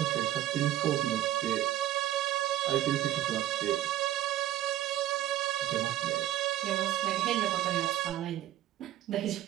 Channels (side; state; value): left; quieter; 13.6 dB